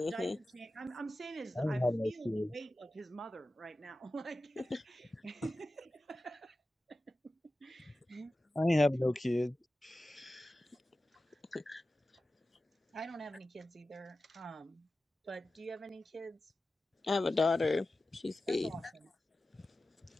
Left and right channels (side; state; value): both; normal; correlation 0.94